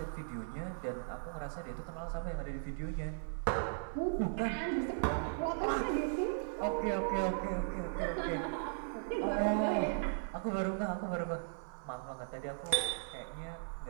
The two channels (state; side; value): silent; left; 53 dB below the other